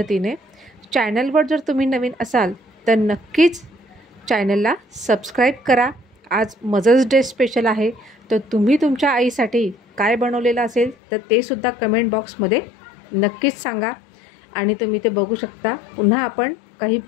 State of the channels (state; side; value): drops out; right; at 11.0 s